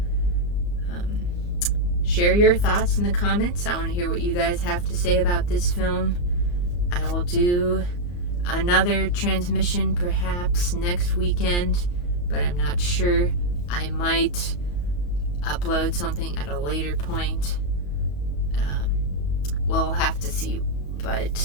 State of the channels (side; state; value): right; late; 34 ms